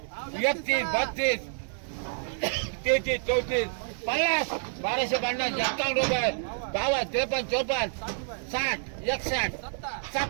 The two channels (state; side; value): silent; left; digital silence